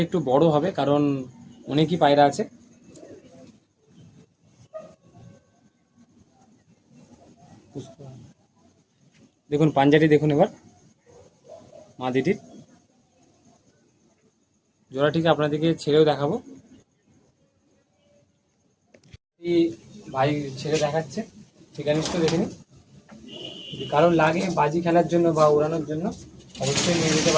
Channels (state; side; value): identical; both; correlation 1.00